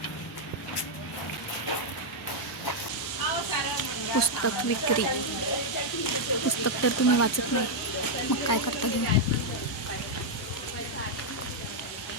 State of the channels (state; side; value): normal; both; correlation -0.03